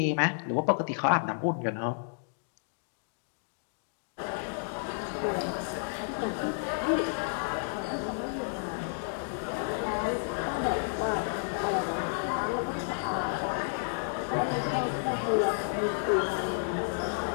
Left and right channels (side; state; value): right; silent; digital silence